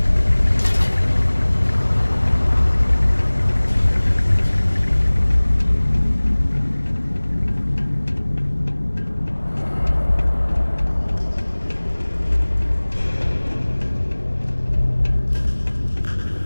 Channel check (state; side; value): inverted; both; correlation -1.00